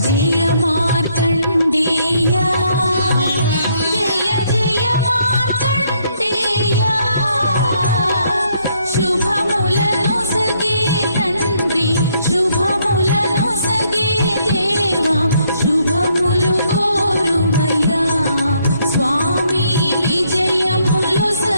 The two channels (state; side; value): inverted; both; correlation -0.71